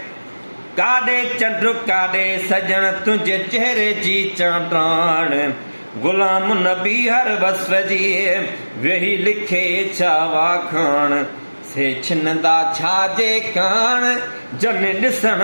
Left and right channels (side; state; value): both; inverted; correlation -1.00